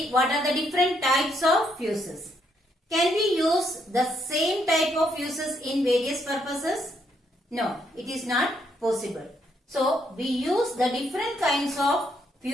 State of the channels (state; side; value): normal; both; correlation 0.74